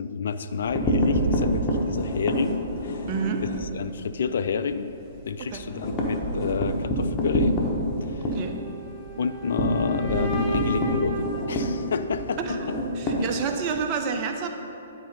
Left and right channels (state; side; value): inverted; both; correlation -0.48